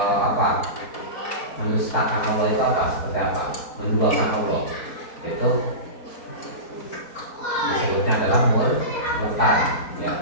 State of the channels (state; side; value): late; right; 4.3 ms